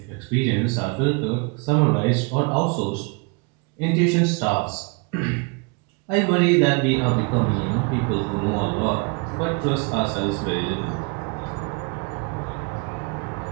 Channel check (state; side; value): quieter; left; 31.6 dB